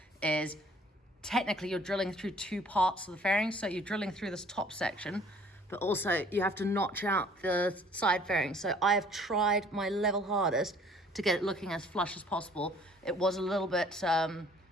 is technically you're drilling through two parts of the fairings. So you're drilling through this top section, but also you have to notch out the side fairings. So I have tried my level hardest to get it looking as flush as possible. It was a little bit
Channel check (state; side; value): normal; both; correlation 0.56